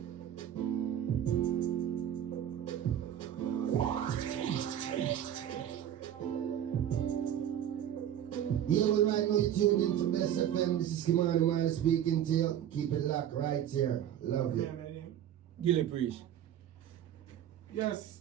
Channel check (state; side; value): quieter; left; 10.5 dB